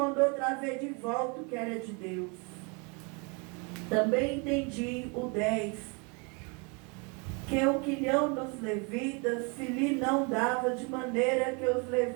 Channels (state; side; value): quieter; left; 32.6 dB